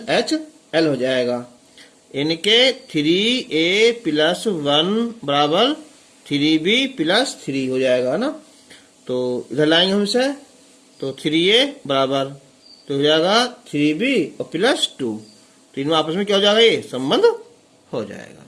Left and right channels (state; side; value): identical; both; correlation 1.00